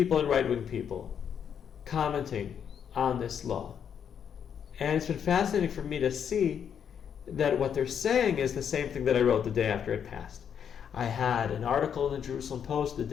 and right-wing people commenting on this law. And it's been fascinating for me to see that what they're saying is the same thing that I wrote the day after it passed. I had an article in the Jerusalem Post the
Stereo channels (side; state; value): right; quieter; 8.1 dB